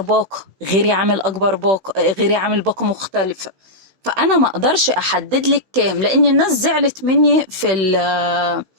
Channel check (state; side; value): late; left; 16 ms